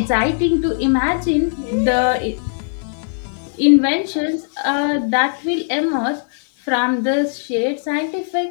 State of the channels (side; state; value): right; silent; digital silence